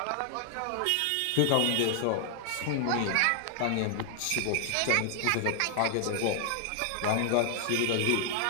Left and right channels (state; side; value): different; both; correlation 0.00